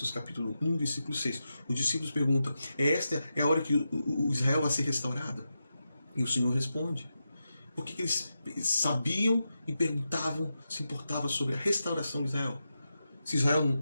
capítulo 1, versículo 6. Os discípulos perguntam, esta é a hora que o Israel vai ser restaurado? E o Senhor responde. Por que eles sabiam e perguntavam, se importavam sobre a restauração de Israel? Se Israel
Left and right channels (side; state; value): both; inverted; correlation -0.88